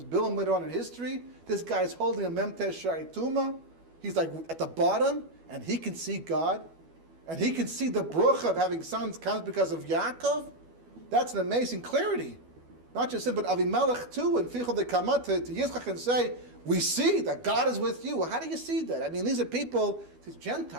Bilam later on in history. This guy's holding a Memtesh Shai Tuma. He's at the bottom, and he can see God. And he can see the bruch of having sons comes because of Yaakov. That's an amazing clarity. Not just him, but Avimelech too, and Fichel de Kamat to Yitzchak and say, we see that God is with you. Well, how do you see that? I mean, these are people, these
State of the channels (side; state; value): left; late; 12 ms